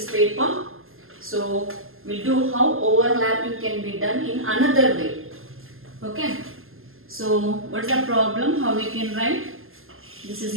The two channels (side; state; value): left; late; 0.61 ms